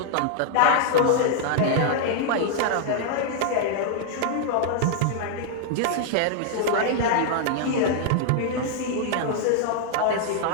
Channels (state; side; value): different; both; correlation 0.00